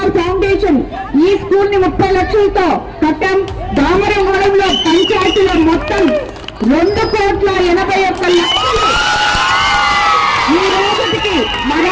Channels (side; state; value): both; identical; correlation 1.00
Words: ఫౌండేషన్ ఈ స్కూల్ ని 30 లక్షలతో కట్టాం. దామరమడుగులో పంచాయతీలో మొత్తం 2,81,00,000 ఈ రోజుకి